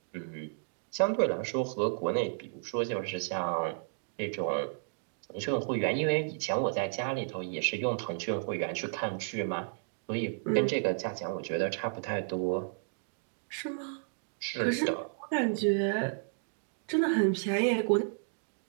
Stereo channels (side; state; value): left; silent; digital silence